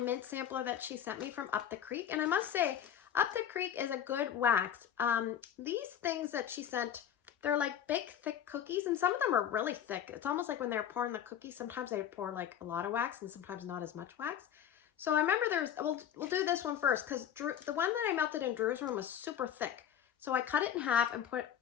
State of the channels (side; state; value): right; quieter; 9.6 dB